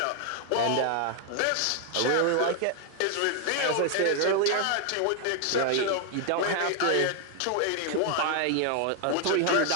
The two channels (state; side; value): different; both; correlation 0.00